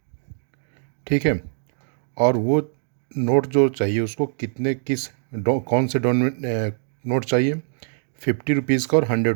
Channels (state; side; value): silent; left; digital silence